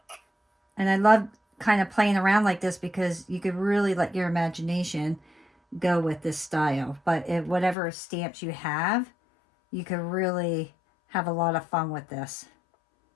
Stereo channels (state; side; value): drops out; right; at 7.8 s